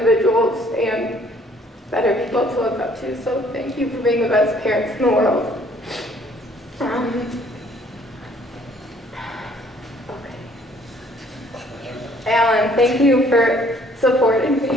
and better people to look up to, so thank you for being the best parents in the world. Alan, thank you for supporting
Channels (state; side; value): normal; both; correlation 0.60